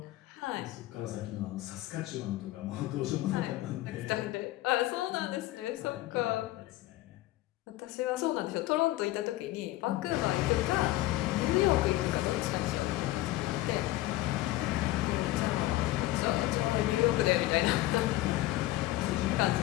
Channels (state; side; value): quieter; right; 16.7 dB